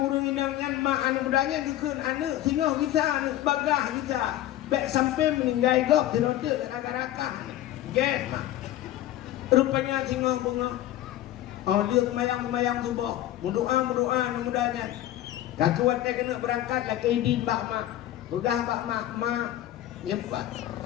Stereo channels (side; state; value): right; quieter; 13.6 dB